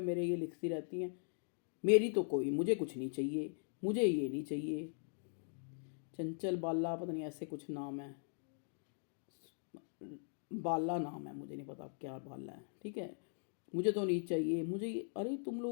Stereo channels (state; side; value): silent; right; digital silence